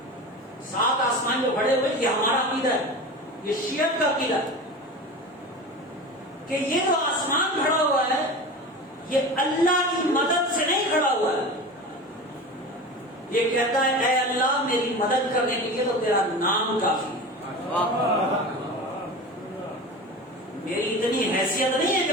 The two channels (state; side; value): normal; both; correlation 0.31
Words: 7 آسمان جو کھڑے ہوئے یہ ہمارا عقیدہ ہے، یہ شیعت کا عقیدہ ہے کہ یہ جو آسمان کھڑا ہوا ہے یہ اللہ کی مدد سے نہیں کھڑا ہوا ہے، یہ کہتا ہے اے اللہ میری مدد کرنے کے لیے تو تیرا نام کافی ہے، میری اتنی حیثیت نہیں ہے